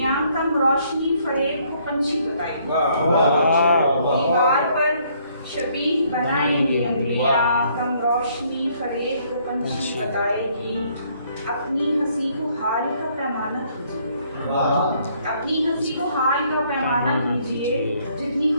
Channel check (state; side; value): inverted; both; correlation -0.66